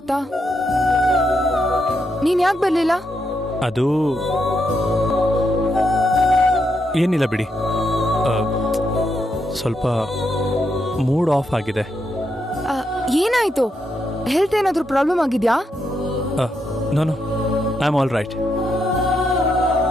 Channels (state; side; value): normal; both; correlation 0.81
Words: ನೀನ್ ಯಾಕೆ ಬರ್ಲಿಲ್ಲ? ಅದು ಏನಿಲ್ಲ ಬಿಡಿ, ಸ್ವಲ್ಪ ಮೂಡ್ ಆಫ್ ಆಗಿದೆ. ಏನಾಯ್ತು? ಹೆಲ್ತ್ ಏನಾದ್ರೂ ಪ್ರಾಬ್ಲಮ್ ಆಗಿದ್ಯಾ? No I am all right.